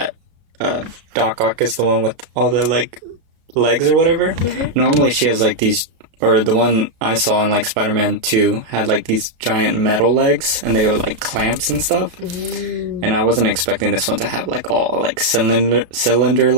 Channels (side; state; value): left; late; 33 ms